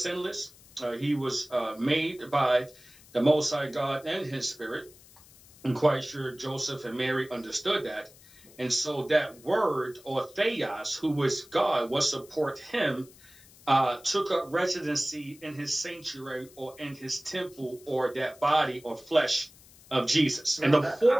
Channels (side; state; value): left; noise; hiss, 24 dB below the sound